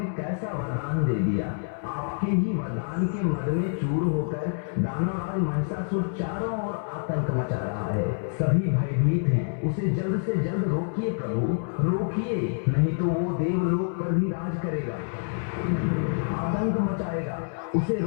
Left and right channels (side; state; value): right; silent; digital silence